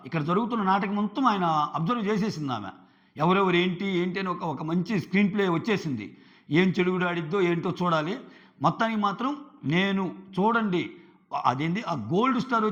ఇక్కడ జరుగుతున్న నాటకం మొత్తం ఆయన అబ్జర్వ్ చేసేసింది ఆమె. ఎవరెవరు ఏంటి అని ఒక మంచి స్క్రీన్ ప్లే వచ్చేసింది. ఏం చెడుగుడు ఆడిద్దో ఏంటో చూడాలి. మొత్తానికి మాత్రం నేను చూడండి, అదేంటి ఆ గోల్డ్ స్టార్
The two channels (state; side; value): identical; both; correlation 1.00